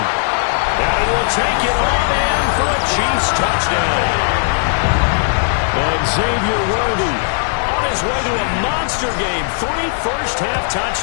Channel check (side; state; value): right; silent; digital silence